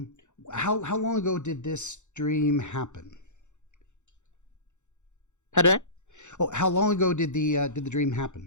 long ago did this dream happen? Pardon? Oh, how long ago did the dream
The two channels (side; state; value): right; late; 0.84 ms